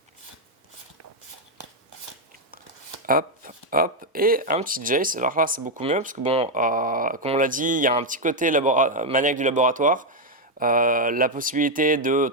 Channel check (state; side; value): normal; both; correlation 0.02